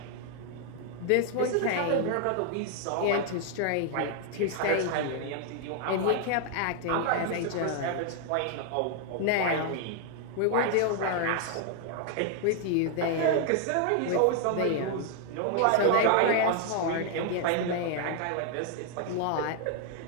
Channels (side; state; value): both; different; correlation 0.00